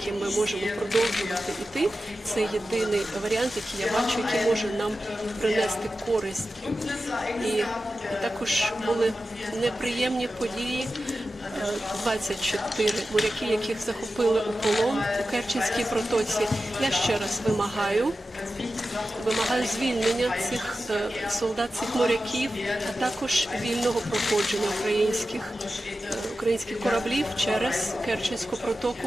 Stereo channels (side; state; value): both; normal; correlation 0.93